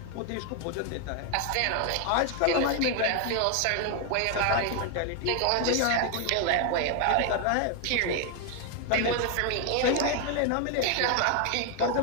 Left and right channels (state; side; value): different; both; correlation 0.01